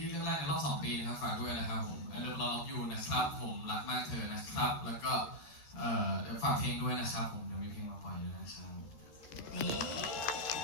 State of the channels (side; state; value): right; late; 13 ms